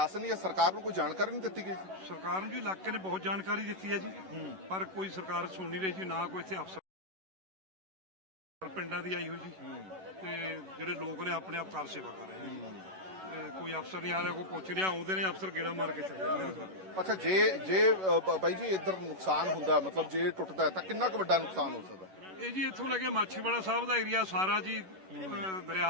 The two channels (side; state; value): left; late; 11 ms